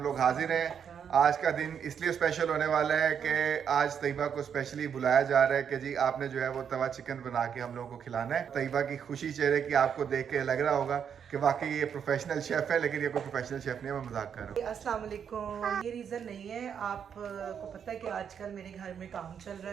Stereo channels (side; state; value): left; quieter; 7.7 dB